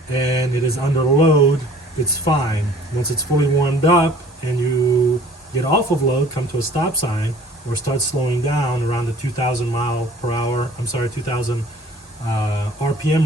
and it is under load, it's fine. Once it's fully warmed up and you get off of load, come to a stop sign, or start slowing down around the 2,000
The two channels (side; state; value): both; normal; correlation 0.52